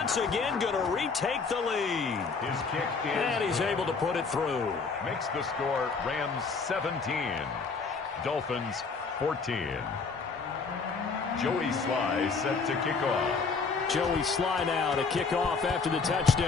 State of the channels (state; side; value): quieter; right; 4.8 dB